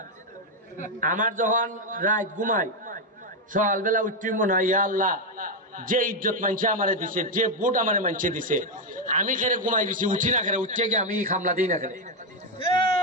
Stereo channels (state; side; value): normal; both; correlation 0.04